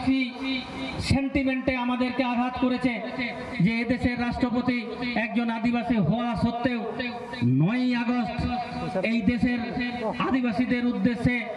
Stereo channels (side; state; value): both; identical; correlation 1.00